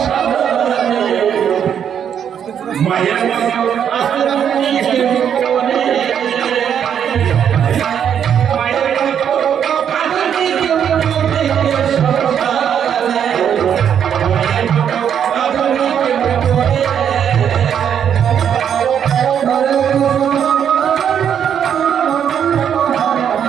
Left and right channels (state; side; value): quieter; left; 8.6 dB